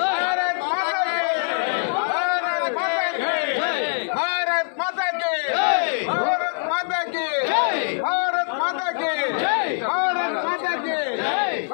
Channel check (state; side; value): silent; right; 60 dB below the other